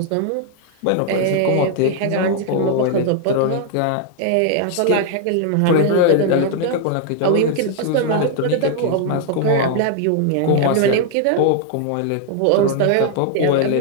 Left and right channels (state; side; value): different; both; correlation 0.00